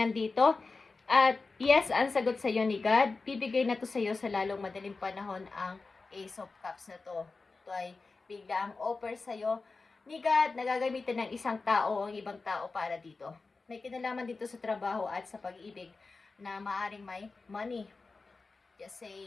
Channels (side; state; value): right; quieter; 4.0 dB